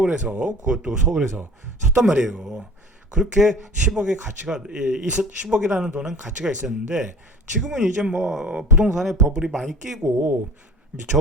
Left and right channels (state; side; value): normal; both; correlation 0.44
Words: 그것도 서울에서 샀단 말이에요. 그렇게 10억의 가치가 10억이라는 돈은 가치가 있었는데 지금은 이제 뭐 부동산에 버블이 많이 끼고 이제